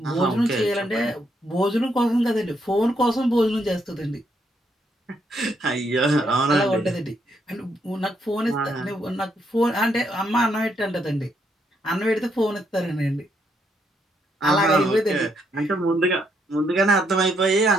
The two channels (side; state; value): both; normal; correlation 0.75